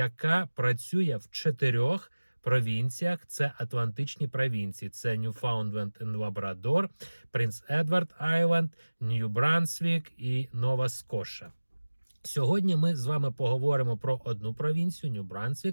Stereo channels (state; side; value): inverted; both; correlation -1.00